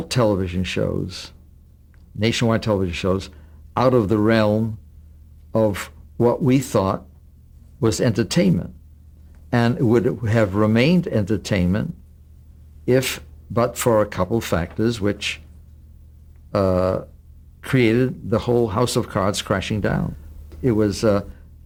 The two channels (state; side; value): identical; both; correlation 1.00